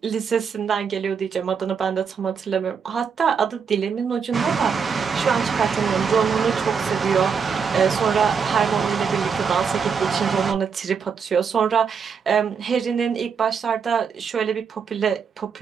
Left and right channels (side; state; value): left; quieter; 6.3 dB